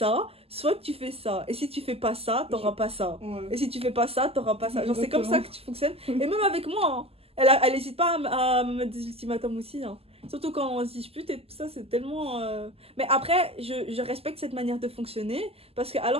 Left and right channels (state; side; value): late; left; 0.29 ms